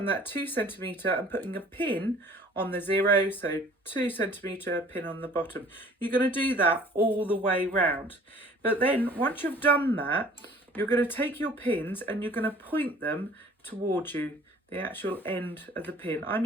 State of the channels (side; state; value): both; normal; correlation 0.51